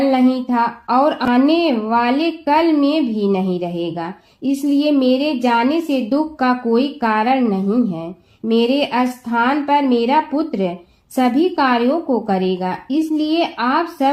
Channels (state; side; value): identical; both; correlation 1.00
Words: नहीं था और आने वाले कल में भी नहीं रहेगा। इसलिए मेरे जाने से दुख का कोई कारण नहीं है। मेरे स्थान पर मेरा पुत्र सभी कार्यों को करेगा। इसलिए आप